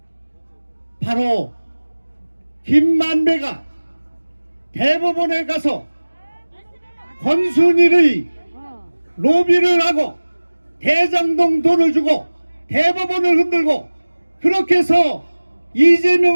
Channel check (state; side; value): inverted; both; correlation -1.00